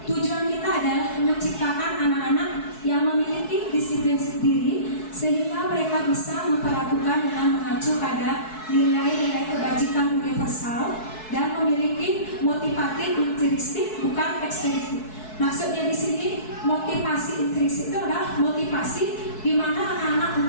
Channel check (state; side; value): late; right; 4.6 ms